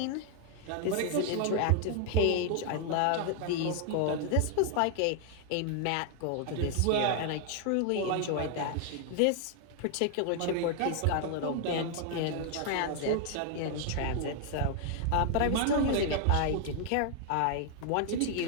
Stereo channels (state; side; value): different; both; correlation 0.00